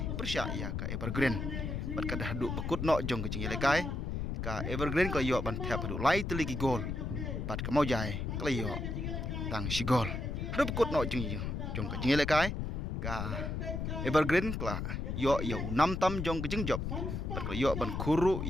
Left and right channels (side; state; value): left; noise; rumble, 3 dB below the sound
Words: persya ya ka Evergreen bat kada haduk bekut no jong kajing lekai ka Evergreen ko yo ban thap haduk lai teliki gol bat ka maujai klayo tang sigol hadu bekut no jong ka jing lekai ka Evergreen kla yo 6 tam jong ke jing job bat yo ban kuru